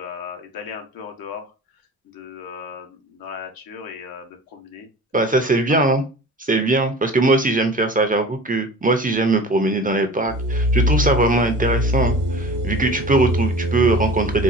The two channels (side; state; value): both; normal; correlation 0.40